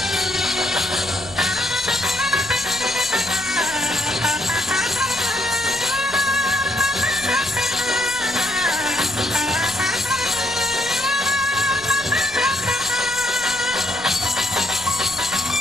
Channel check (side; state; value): left; noise; rumble, 20 dB below the sound